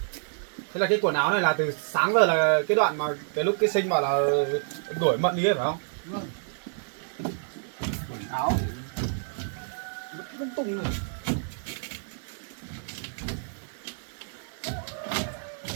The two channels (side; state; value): left; silent; digital silence